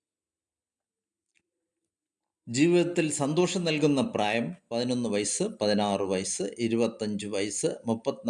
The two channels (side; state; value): both; identical; correlation 1.00